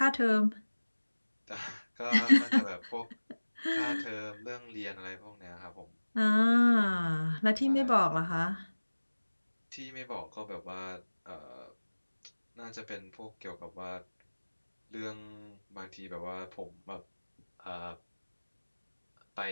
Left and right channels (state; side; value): inverted; both; correlation -1.00